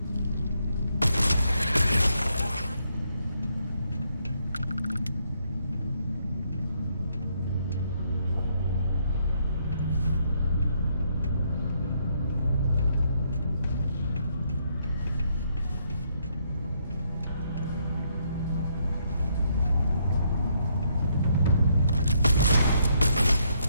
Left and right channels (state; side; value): inverted; both; correlation -0.73